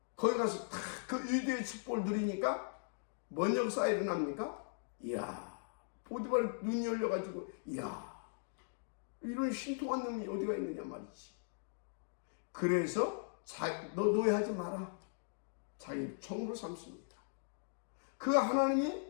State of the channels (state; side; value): silent; right; digital silence